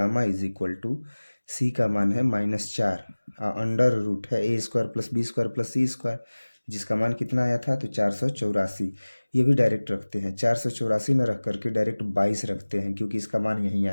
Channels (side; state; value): both; inverted; correlation -1.00